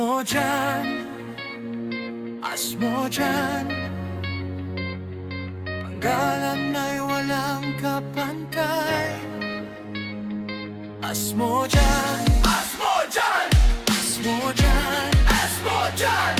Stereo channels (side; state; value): both; identical; correlation 1.00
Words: Asmodyan, panggalan ay walang kapantay. Asmodyan, Asmodyan, Asmodyan, Asmodyan,